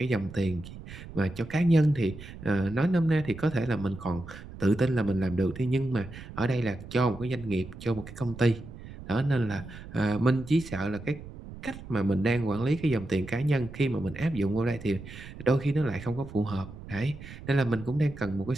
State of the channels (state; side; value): noise; right; rumble, 14 dB below the sound